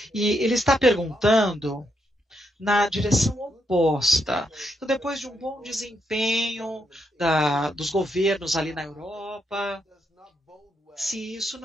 E ele está perguntando na direção oposta. Então, depois de um bom desempenho dos governos ali na Europa, se isso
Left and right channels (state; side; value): normal; both; correlation 0.79